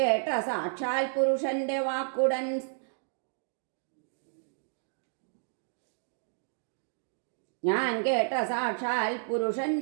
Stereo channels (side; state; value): left; silent; digital silence